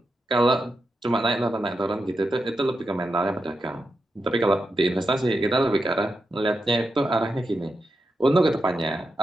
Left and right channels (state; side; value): normal; both; correlation 0.87